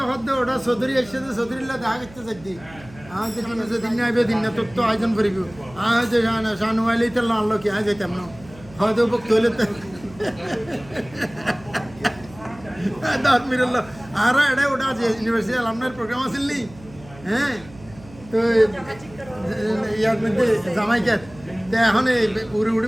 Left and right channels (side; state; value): right; noise; hum, 21 dB below the sound